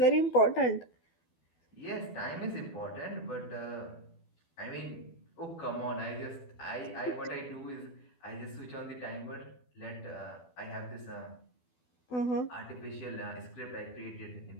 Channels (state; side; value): late; right; 12 ms